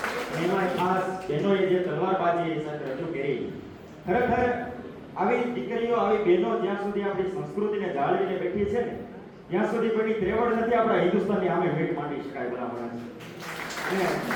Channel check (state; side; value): identical; both; correlation 1.00